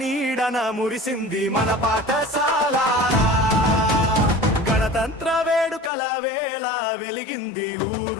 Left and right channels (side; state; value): right; drops out; at 5.9 s